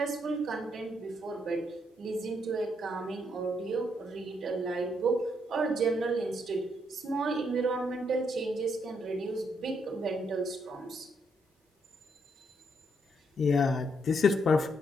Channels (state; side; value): normal; both; correlation 0.75